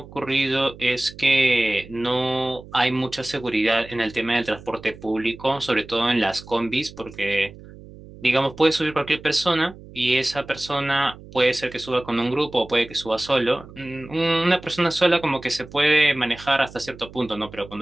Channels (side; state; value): right; noise; hum, 18 dB below the sound